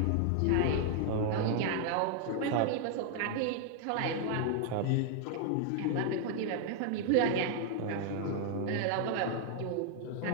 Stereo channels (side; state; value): both; different; correlation 0.00